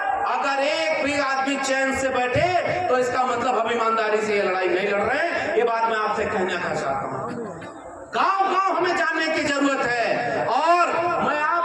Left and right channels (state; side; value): identical; both; correlation 1.00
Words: अगर एक भी आदमी चैन से बैठे तो इसका मतलब हम ईमानदारी से ये लड़ाई नहीं लड़ रहे हैं। ये बात मैं आपसे कहना चाहता हूं। गांव गांव हमें जानने की जरूरत है, और मैं